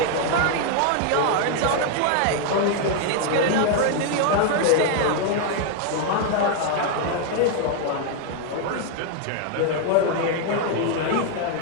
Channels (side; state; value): both; different; correlation 0.00